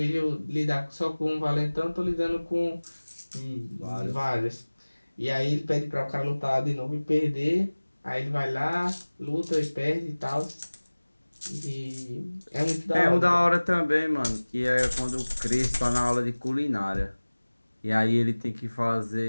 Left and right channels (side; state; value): both; inverted; correlation -1.00